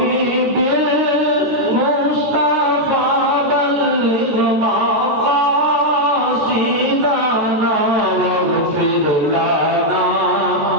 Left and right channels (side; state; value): left; late; 13 ms